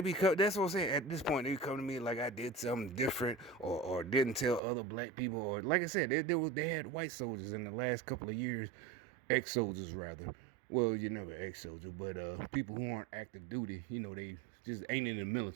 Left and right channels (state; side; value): drops out; left; at 4.6 s